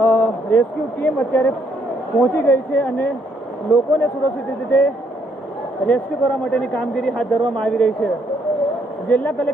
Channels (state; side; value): normal; both; correlation 0.70